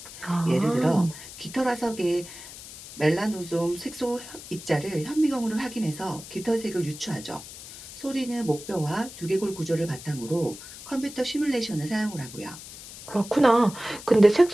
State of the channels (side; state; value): left; noise; hiss, 14 dB below the sound